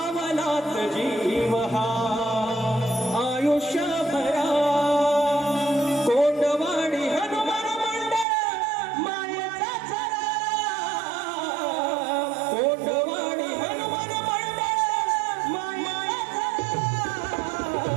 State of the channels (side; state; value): left; drops out; at 8.2 s